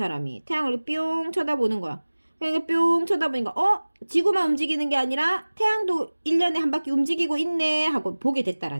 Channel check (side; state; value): both; inverted; correlation -1.00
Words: 태양을 뿅 쳐다보는 거야. 그러니까 뿅 쳐다보니까 지구만 움직이는 게 아니라 태양도 1년에 한 바퀴 움직이고 있네 하고 보게